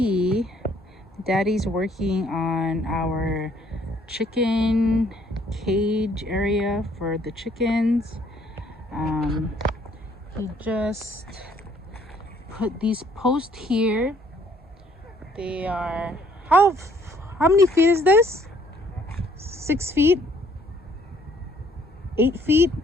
Daddy's working on our chicken cage area for the chickens. He just put these posts here. They are how many feet is this? 6 feet? 8 feet?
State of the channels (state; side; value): normal; both; correlation 0.63